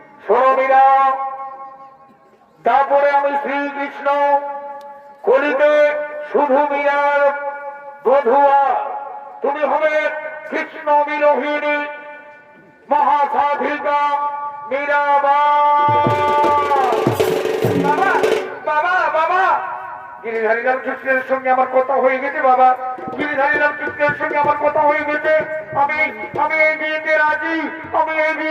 শোনো মীরা, তারপরে আমি শ্রীকৃষ্ণ কলিতে শুধু মীরার বধুয়া, তুমি হবে কৃষ্ণ বিরোহিণী মহাসাধিকা মীরাবাই। বাবা বাবা বাবা গিরিধারীলাল কৃষ্ণের সঙ্গে আমার কথা হয়ে গেছে বাবা, গিরিধারীলাল কৃষ্ণের সঙ্গে আমার কথা হয়ে গেছে। আমি আমি এই বিয়েতে রাজি, আমি এই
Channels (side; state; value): both; identical; correlation 1.00